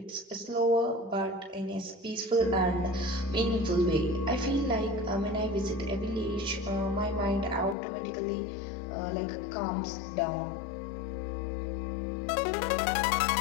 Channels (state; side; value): drops out; right; at 7.8 s